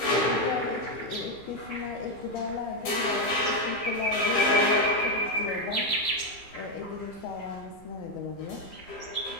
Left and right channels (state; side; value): late; right; 15 ms